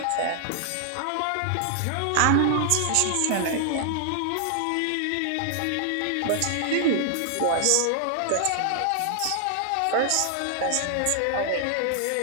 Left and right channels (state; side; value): different; both; correlation 0.00